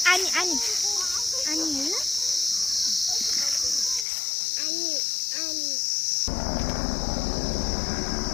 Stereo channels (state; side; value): drops out; right; at 4.0 s